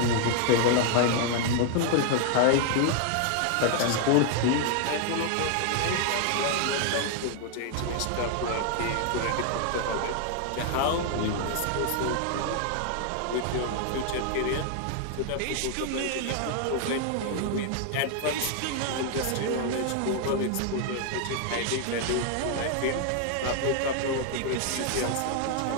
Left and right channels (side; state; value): both; different; correlation 0.00